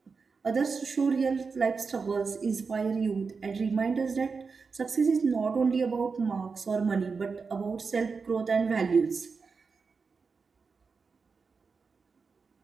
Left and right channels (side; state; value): left; quieter; 4.9 dB